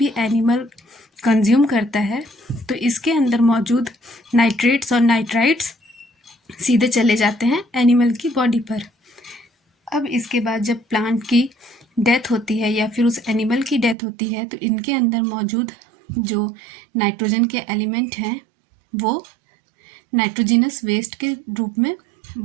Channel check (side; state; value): left; drops out; at 14.0 s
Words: एनिमल कंज्यूम करता है तो इसके अंदर मौजूद नाइट्रेट्स और नाइट्राइट्स सीधे चले जाते हैं एनिमल की बॉडी पर। अब इसके बाद जब प्लांट की डेथ होती है या फिर उस एनिमल की डेथ होती है तो इनके अंदर मौजूद जो नाइट्रोजन के एलिमेंट हैं वो नाइट्रोजिनस वेस्ट के रूप में